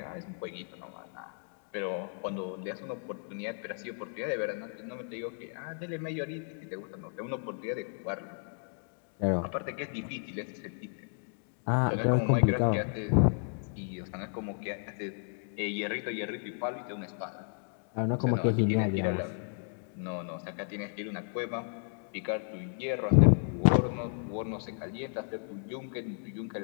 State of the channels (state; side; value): silent; right; 56 dB below the other